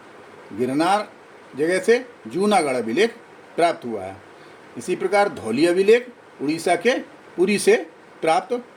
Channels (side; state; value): both; identical; correlation 1.00